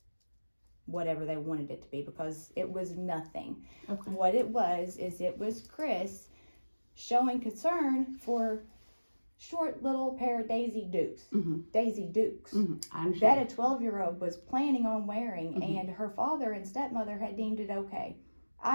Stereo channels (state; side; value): inverted; both; correlation -1.00